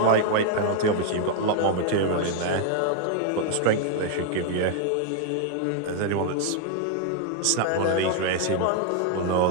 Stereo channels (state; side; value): different; both; correlation 0.00